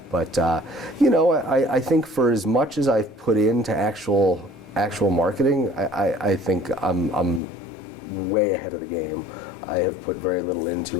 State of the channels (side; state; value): right; drops out; at 7.4 s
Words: But I think for as much as I've put into actual actual marketing, I think I'm way ahead of the game. I have put very little